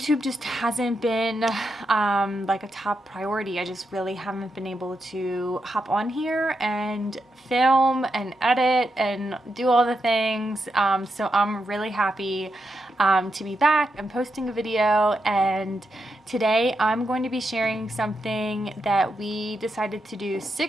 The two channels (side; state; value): both; normal; correlation 0.85